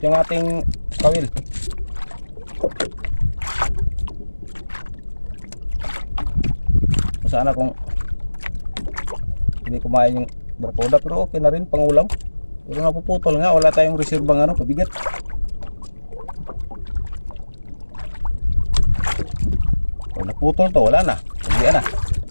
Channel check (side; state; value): both; inverted; correlation -1.00